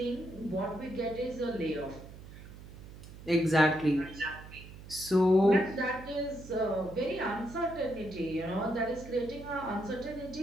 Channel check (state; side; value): noise; right; hum, 15 dB below the sound